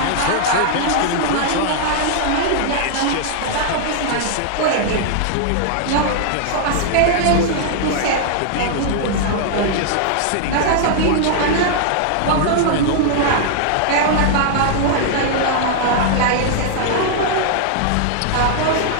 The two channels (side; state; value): both; different; correlation -0.01